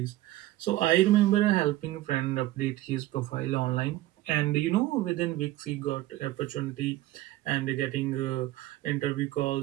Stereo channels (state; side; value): quieter; left; 15.9 dB